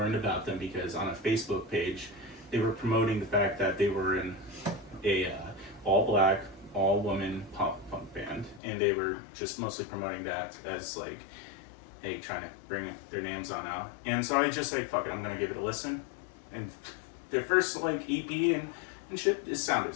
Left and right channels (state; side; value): drops out; right; at 8.6 s